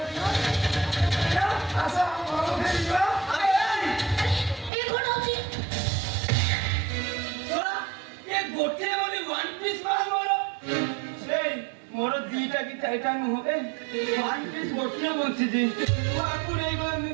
ଆସ ଘର ଫେରିଯିବା ଏ କଣ ହଉଛି ये गोटे बोली वन पीस माल मोरो এই মোর দিটা কি চাইটা হবে ওয়ান পিস গোটিয়ে বঞ্চিছি আপু নেই গলে মু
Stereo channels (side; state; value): left; drops out; at 4.7 s